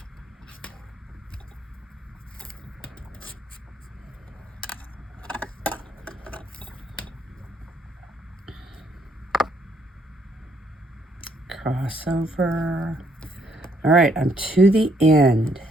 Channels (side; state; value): both; normal; correlation 0.70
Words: Crossover. All right, I'm to the end.